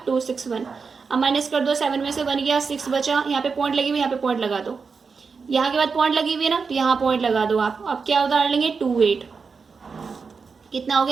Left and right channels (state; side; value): quieter; left; 5.1 dB